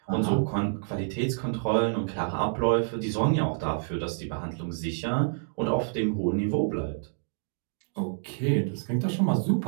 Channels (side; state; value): left; silent; digital silence